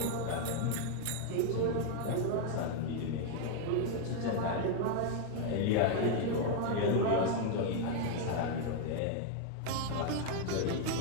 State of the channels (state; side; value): different; both; correlation 0.01